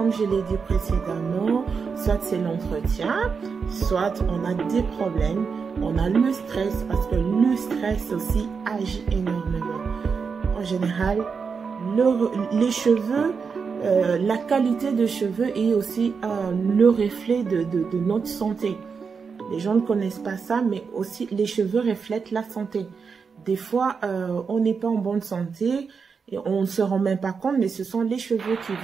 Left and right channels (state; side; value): quieter; left; 5.6 dB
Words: je l'ai dit précédemment, soit c'est l'entretien, soit on a des problèmes. On a le stress, parce que le stress aussi agit énormément. En général, les cheveux, la qualité de cheveux est aussi le reflet de notre santé. Les gens ne connaissent pas ça, mais aussi les cheveux reflètent la santé. Des fois, on n'est pas en bonne santé et on ne se rend même pas compte, mais ce sont les cheveux qui